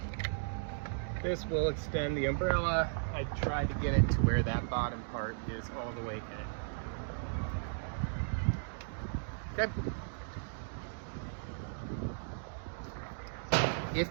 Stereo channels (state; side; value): silent; left; digital silence